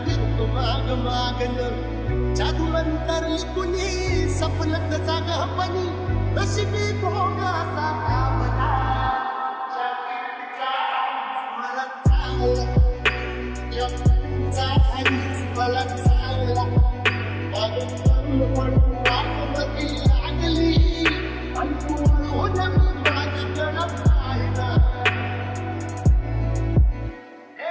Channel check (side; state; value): both; identical; correlation 1.00